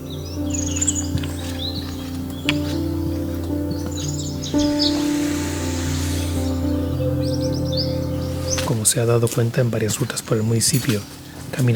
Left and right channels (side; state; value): both; identical; correlation 1.00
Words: Como se ha dado cuenta en varias rutas por el municipio,